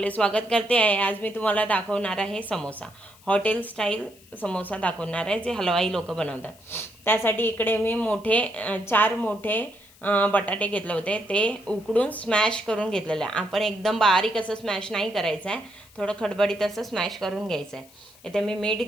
स्वागत करते आहे। आज मी तुम्हाला दाखवणार आहे समोसा, हॉटेल स्टाईल समोसा दाखवणार आहे जे हलवाई लोक बनवतात। त्यासाठी इकडे मी 4 मोठे बटाटे घेतले होते, ते उकडून स्मॅश करून घेतलेले आहे। आपण एकदम बारीक असं स्मॅश नाही करायचं आहे, थोडं खडबडीत असं स्मॅश करून घ्यायचं आहे। इथे मी मीठ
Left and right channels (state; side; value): noise; left; hiss, 26 dB below the sound